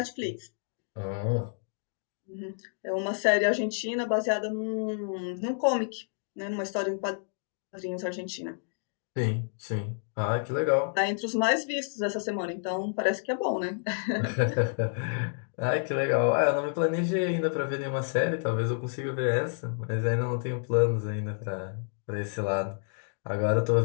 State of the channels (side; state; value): right; silent; digital silence